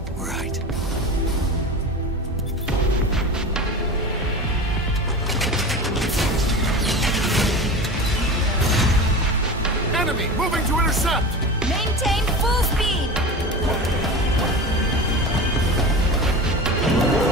Right. Enemy moving to intercept! Maintain full speed!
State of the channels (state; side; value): normal; both; correlation 0.30